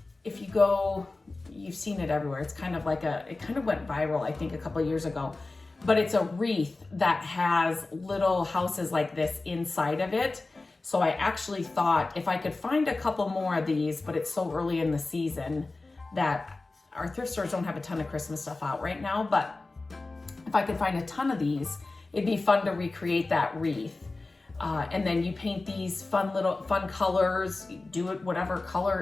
you've seen it everywhere. It's kind of like it kind of went viral, I think, a couple of years ago, but it's a wreath that has little houses like this inside of it. So I actually thought if I could find a couple more of these, but it's so early in the season that our thrift stores don't have a ton of Christmas stuff out right now, but if I could find a ton of these, it'd be fun to recreate that wreath. And then you paint these fun colors, do it whatever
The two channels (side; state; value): right; quieter; 3.3 dB